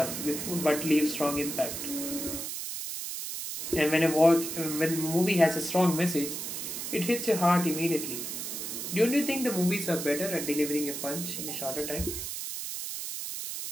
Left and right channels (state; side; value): noise; right; hiss, 5 dB below the sound